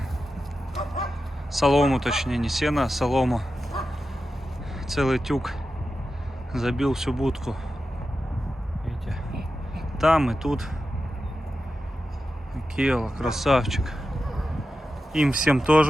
солому, точнее, не сено, а солому. Целый тюк, забил всю будку. Видите? Там и тут. Келла, красавчик. Им всем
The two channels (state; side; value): normal; both; correlation 0.91